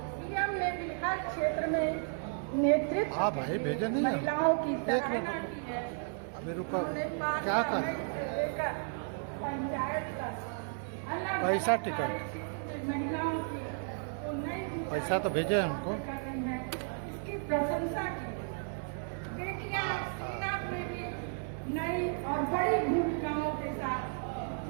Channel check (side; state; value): left; silent; 55 dB below the other